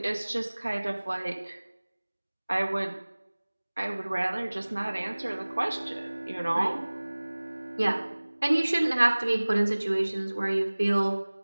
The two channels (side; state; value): both; inverted; correlation -1.00